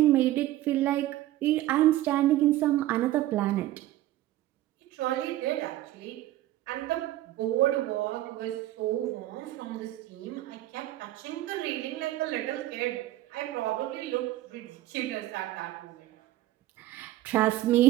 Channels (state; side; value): quieter; left; 15.1 dB